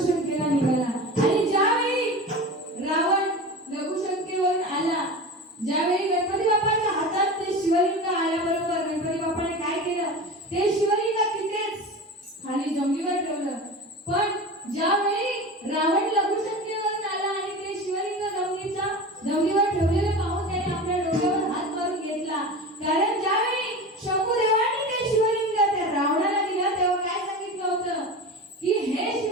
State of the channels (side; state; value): both; normal; correlation 0.30